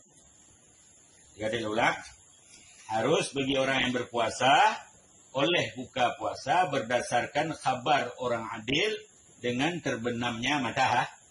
Jadi ulang, harus bagi orang yang berpuasa oleh buka puasa berdasarkan khabar orang adil dengan terbenamnya matahari.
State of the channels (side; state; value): both; identical; correlation 1.00